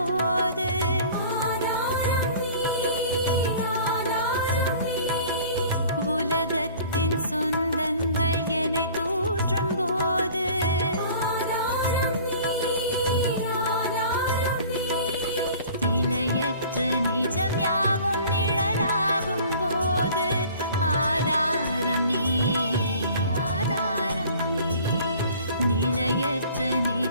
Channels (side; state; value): both; inverted; correlation -0.47